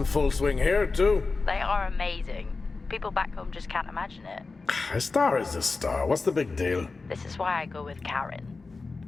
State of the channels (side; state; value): right; quieter; 4.0 dB